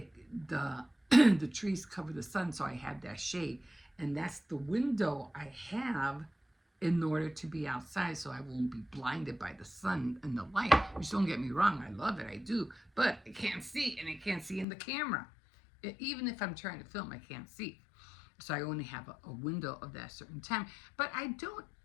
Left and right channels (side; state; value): right; drops out; at 14.7 s